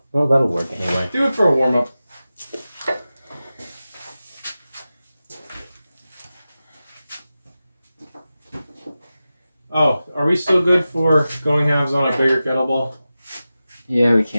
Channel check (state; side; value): inverted; both; correlation -0.94